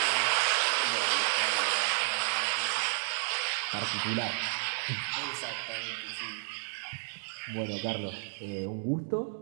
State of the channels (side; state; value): left; silent; digital silence